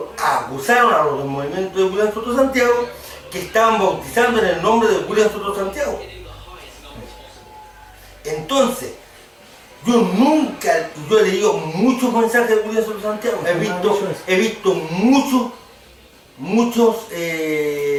acusaron a los del movimiento de William Soto Santiago que estaban bautizando en el nombre de William Soto Santiago. Entonces, yo he leído muchos mensajes de William Soto Santiago, he visto muchos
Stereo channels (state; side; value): identical; both; correlation 1.00